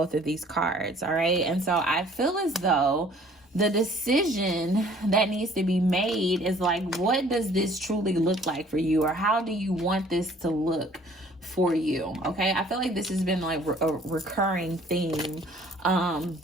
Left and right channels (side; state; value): both; normal; correlation 0.56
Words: of these cards. All right. And so I feel as though the decision that needs to be made is like, what does this truly look like for you? Or how do you want this to look for you? Okay. I feel like this has been like a recurring theme